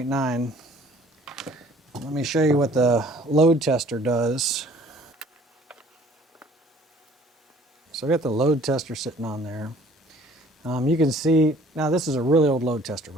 Let me show you what the load tester does. So I got the load tester sitting on there. You can see, now this is a really old load tester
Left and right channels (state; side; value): normal; both; correlation 0.54